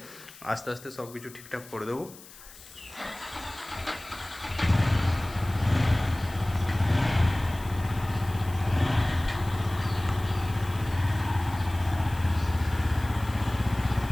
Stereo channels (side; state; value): left; noise; hiss, 19 dB below the sound